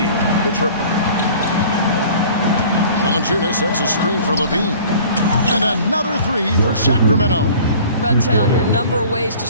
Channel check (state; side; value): inverted; both; correlation -0.47